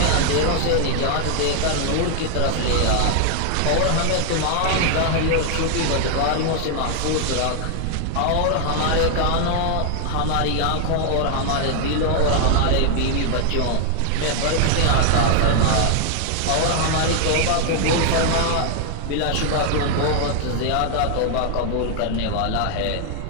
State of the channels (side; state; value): both; different; correlation 0.00